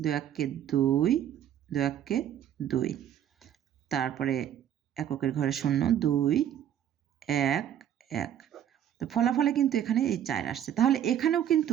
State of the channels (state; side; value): quieter; left; 10.2 dB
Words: 1 2, 2 1 2, তারপরে এককের ঘরে 0, 2, 1, 1। তো ফলাফলে কিন্তু এখানে এই 4 আসছে। তাহলে এখানেও